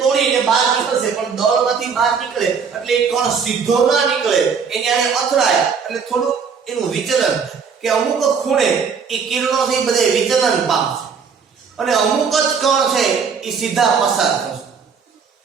બહાર નીકળશે, પણ દળમાંથી બહાર નીકળે એટલે એ કણ સીધો ના નીકળે, એની આને અથડાય એટલે થોડું એનું વિચલન, કે અમુક ખૂણે એ કિરણોથી બધે વિચલન પામશે અને અમુક જ કણ છે એ સીધા પસાર થશે,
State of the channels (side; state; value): left; quieter; 6.1 dB